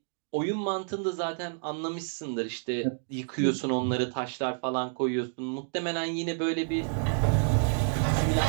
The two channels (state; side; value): silent; left; digital silence